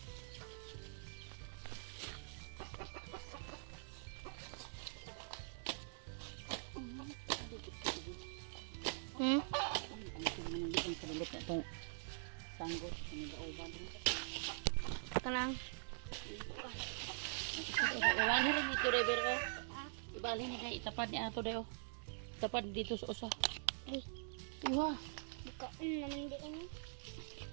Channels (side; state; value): left; silent; digital silence